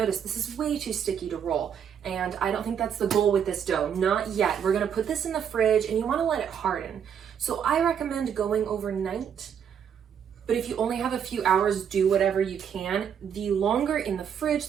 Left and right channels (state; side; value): quieter; left; 8.1 dB